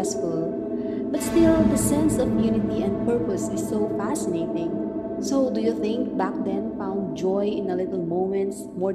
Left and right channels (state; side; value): identical; both; correlation 1.00